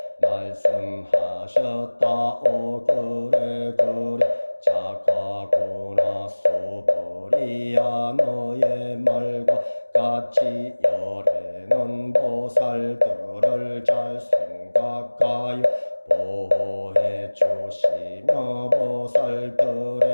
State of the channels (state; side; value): inverted; both; correlation -1.00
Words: 말씀하셨다오. 그래 착하구나 소보리야. 너의 말과 같이 열애는 보살들을 잘 생각하여 보호해 주시며